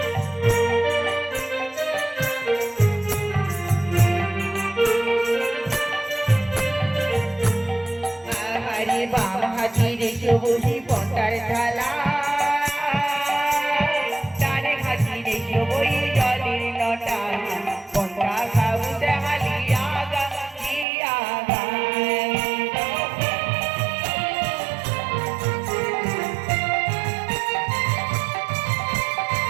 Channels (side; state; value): left; drops out; at 20.9 s